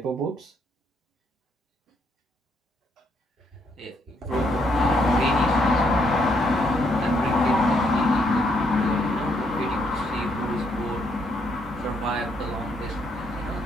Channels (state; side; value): normal; both; correlation 0.73